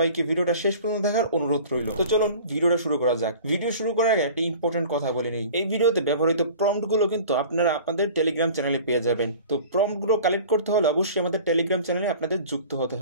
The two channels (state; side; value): inverted; both; correlation -0.42